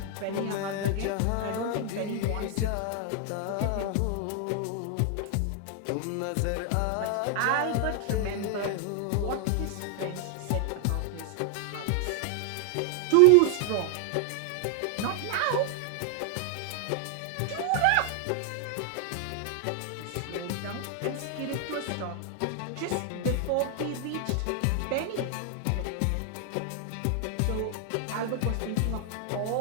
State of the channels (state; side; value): different; both; correlation 0.00